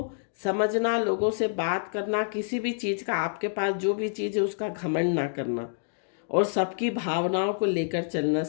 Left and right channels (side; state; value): right; silent; digital silence